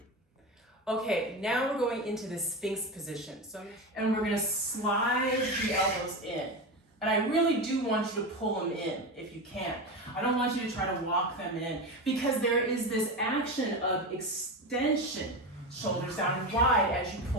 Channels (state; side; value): normal; both; correlation 0.20